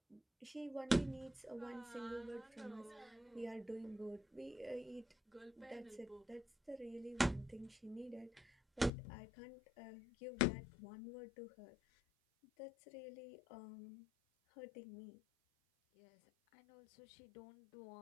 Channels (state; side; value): drops out; right; at 8.9 s